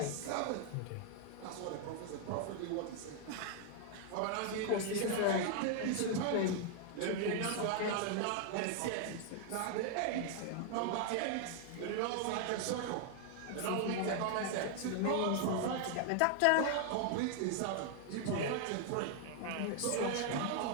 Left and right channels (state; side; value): different; both; correlation 0.00